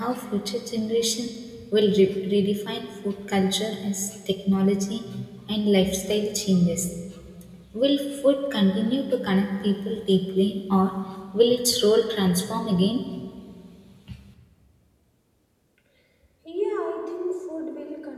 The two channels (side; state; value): both; identical; correlation 1.00